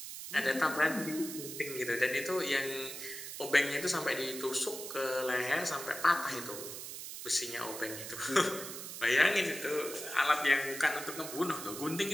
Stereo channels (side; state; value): right; noise; hiss, 9 dB below the sound